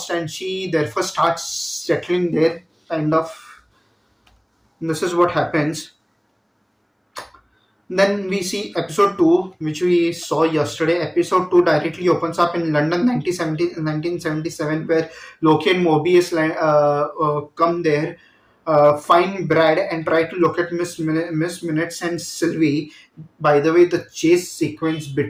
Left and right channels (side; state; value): both; identical; correlation 1.00